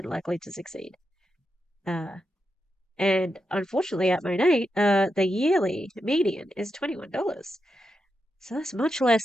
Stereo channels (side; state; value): both; normal; correlation 0.86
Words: likely to succeed. And unfortunately at MONAT, the yearly median is $21. So that's much